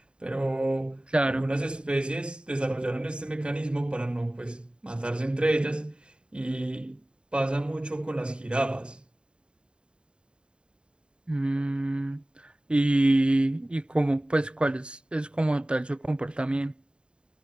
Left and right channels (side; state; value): left; late; 0.051 ms